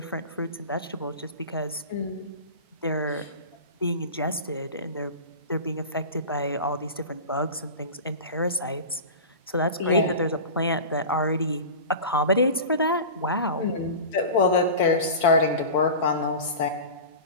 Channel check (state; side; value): inverted; both; correlation -0.32